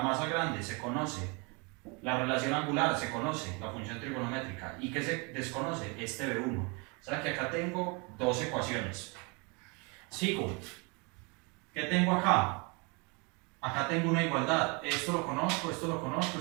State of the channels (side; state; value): left; quieter; 30.9 dB